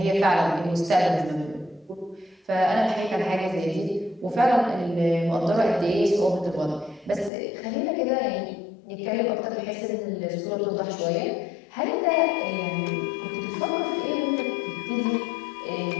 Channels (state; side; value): drops out; right; at 7.3 s